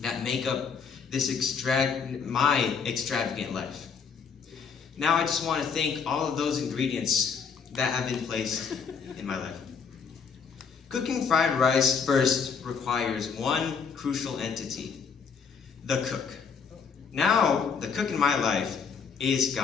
that make up this my extravagant life. Now I just want to thank all of those ingredients that have been placed in my life. Cooking fried rice first requires one crucial entity, the cook. Now, the cook in my life is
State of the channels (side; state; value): right; quieter; 6.2 dB